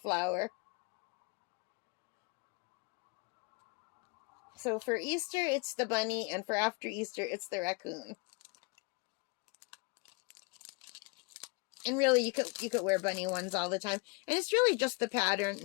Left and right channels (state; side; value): quieter; right; 30.1 dB